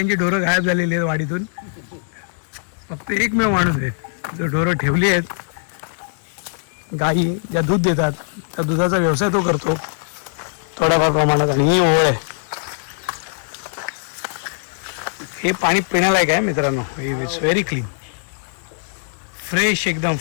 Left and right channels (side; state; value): right; silent; digital silence